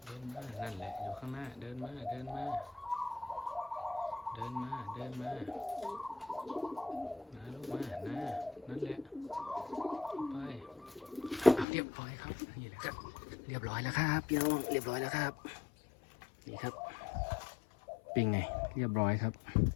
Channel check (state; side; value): drops out; right; at 11.7 s